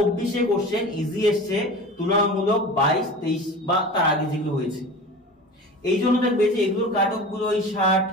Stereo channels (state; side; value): normal; both; correlation 0.35